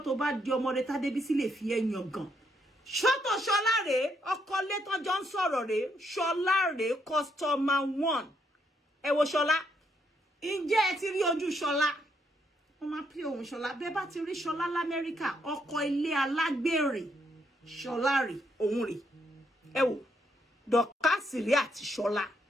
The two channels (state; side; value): normal; both; correlation 0.74